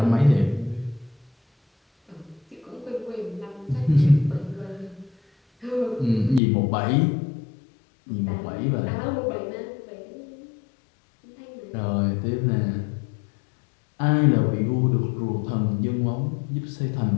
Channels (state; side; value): drops out; right; at 6.4 s